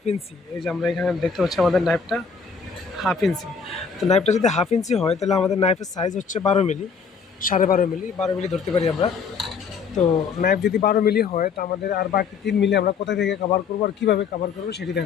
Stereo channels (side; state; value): right; quieter; 5.8 dB